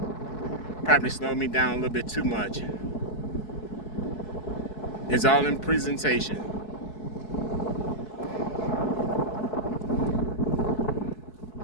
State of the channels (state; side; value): late; right; 4.7 ms